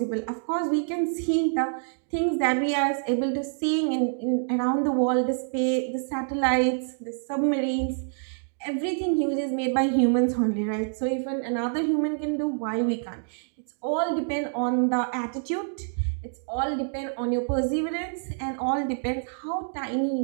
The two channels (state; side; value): silent; left; digital silence